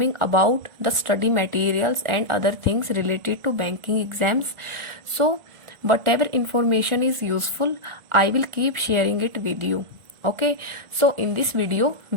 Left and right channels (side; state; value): left; late; 1.4 ms